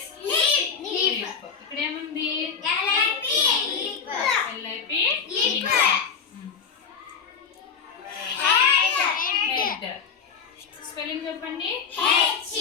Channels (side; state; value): right; quieter; 6.2 dB